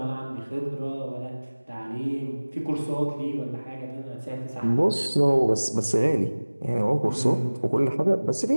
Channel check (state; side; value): inverted; both; correlation -1.00